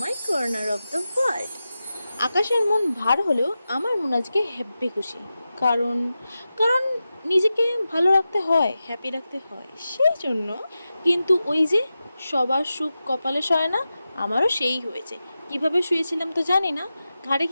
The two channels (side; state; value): both; inverted; correlation -0.92